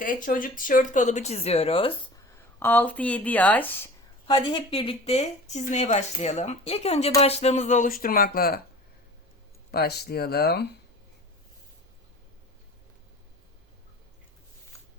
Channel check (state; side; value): normal; both; correlation 0.40